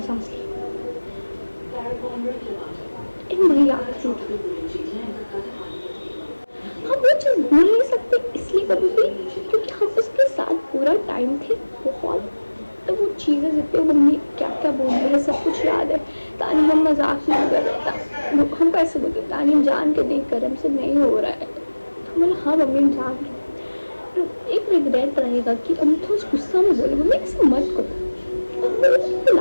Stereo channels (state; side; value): inverted; both; correlation -1.00